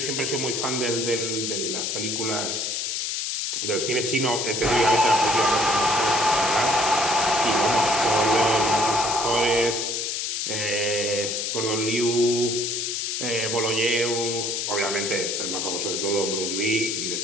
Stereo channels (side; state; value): left; noise; hiss, 1 dB below the sound